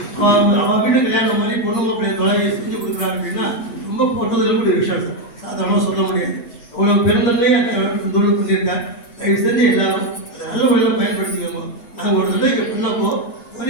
அவன் வீட்டு கல்யாணம் மாதிரி பொண்ணு மாப்பிள்ளைய தொலைவை செஞ்சு கொடுக்குறாங்க அப்படின்னா ரொம்ப போட்டதில் கூட விஷயம் சார், சாதாரணமாக சொல்ல முடியாது. அவ்வளோ பெருந்தன்மையே தொழில் பண்ணியிருக்காங்க. தயவு செஞ்சு எல்லாரும் அதை நல்ல வழியில் பயன்படுத்திக்கோங்க. நாங்கள் ஒரு தடவை இங்கே பண்ணப்போ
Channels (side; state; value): right; late; 8.0 ms